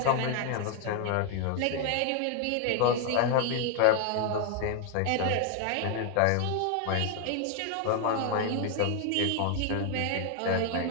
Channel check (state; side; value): different; both; correlation 0.00